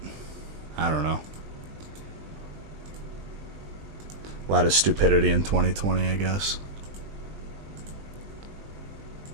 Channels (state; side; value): late; left; 20 ms